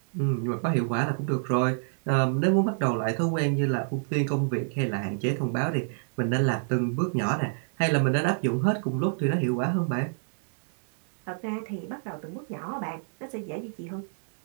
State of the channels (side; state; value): left; silent; digital silence